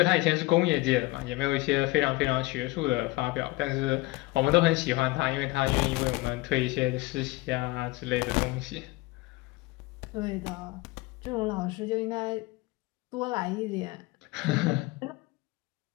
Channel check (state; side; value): quieter; right; 21.4 dB